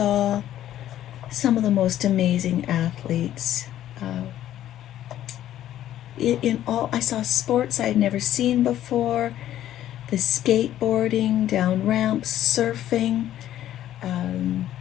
some of the most amazing athletes. I saw sports I'd never seen before, the skateboarding, down ramps, surfing,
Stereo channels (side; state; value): right; quieter; 12.3 dB